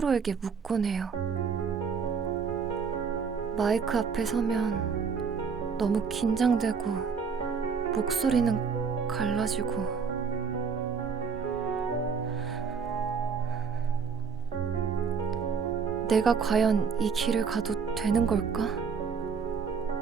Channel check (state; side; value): quieter; left; 5.8 dB